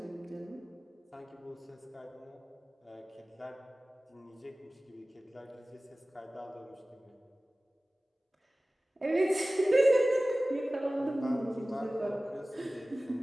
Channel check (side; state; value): both; normal; correlation 0.97